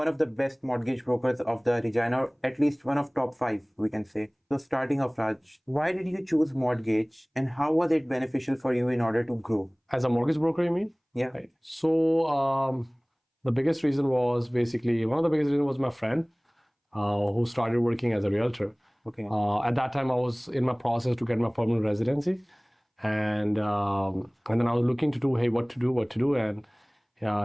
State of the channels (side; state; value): both; identical; correlation 1.00